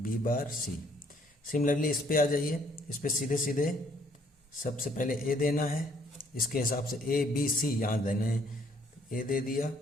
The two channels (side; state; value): both; normal; correlation 0.64